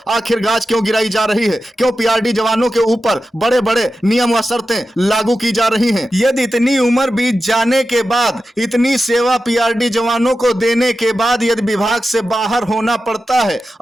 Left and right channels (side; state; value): both; normal; correlation 0.92